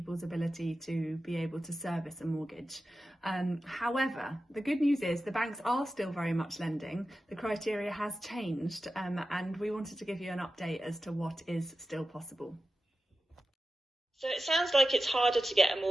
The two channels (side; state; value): both; normal; correlation 0.92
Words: ability to be able to service a mortgage. However, the good news is the banks are still very much lending. The criteria has changed, and we wanted to give you an update as to what is still possible. So it sounds like it's harder to get a